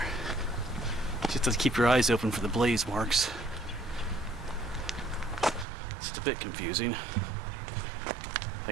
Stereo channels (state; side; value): drops out; left; at 5.7 s